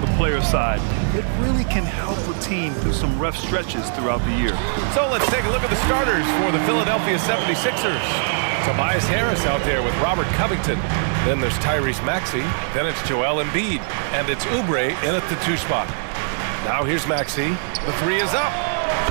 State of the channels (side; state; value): left; silent; digital silence